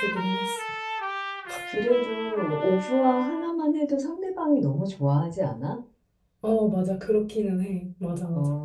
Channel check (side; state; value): both; identical; correlation 1.00